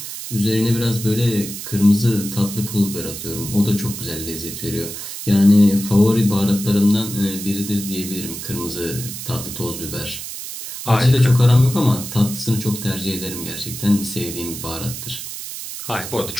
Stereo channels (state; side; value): noise; right; hiss, 9 dB below the sound